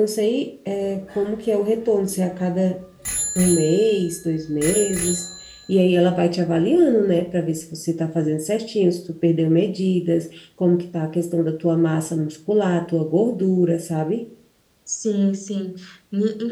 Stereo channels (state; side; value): identical; both; correlation 1.00